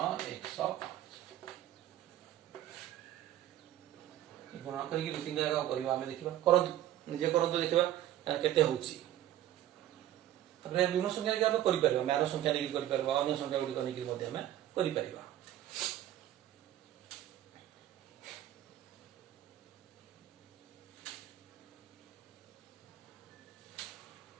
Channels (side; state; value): left; quieter; 12.8 dB